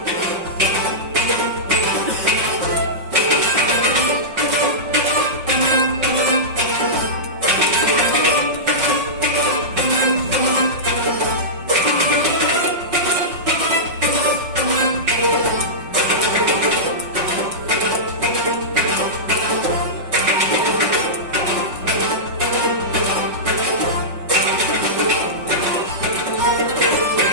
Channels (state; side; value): late; left; 5.5 ms